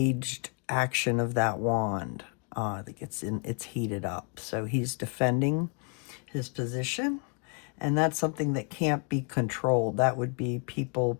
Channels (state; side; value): quieter; right; 37.6 dB